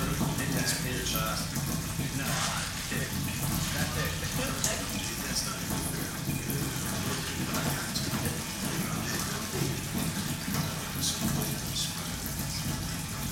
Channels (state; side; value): identical; both; correlation 1.00